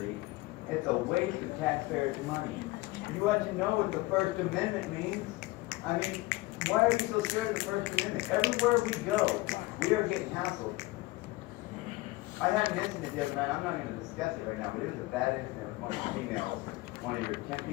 It's a waste of taxpayers' money. You want to know what the First Amendment means? I mean, why are you so scared of the First Amendment? Everywhere we go, we are getting hassled. I had an incident the other night, I'm not going to discuss it right now, but it was a bad incident with one of the females, one of your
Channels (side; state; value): right; quieter; 20.8 dB